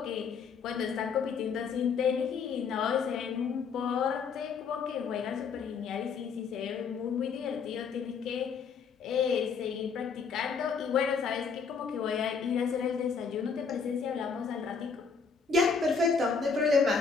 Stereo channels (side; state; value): right; quieter; 5.7 dB